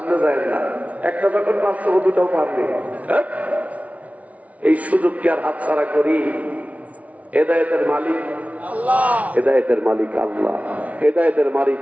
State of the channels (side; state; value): left; late; 0.068 ms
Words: যায় না। একটা যখন পারছো, 2টাও পারবে। এই সুযোগকে আর হাতছাড়া করি? হেদায়েতের মালিক আল্লাহ, হেদায়েতের মালিক আল্লাহ। হেদায়েতের মালিক